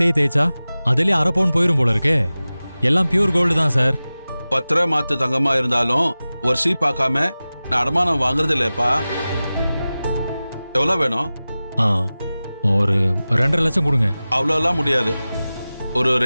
அதுலயே அரை பவுன் போயிரும் போல இருக்கே. எல்லாம் பியூர் கோல்டு தான் சார். 10 ரூபா மாத்து தங்கமா இருந்தாலும் ஒரு சீ பார்க்காம நான் அடமானம் வாங்குறது இல்லப்பா. எவ்வளவு வேணும்? ஒரு 2.5 லட்சம் கொடுங்க. அவ்வளோலாம் முடியாது. ஒரு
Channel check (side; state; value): both; inverted; correlation -0.97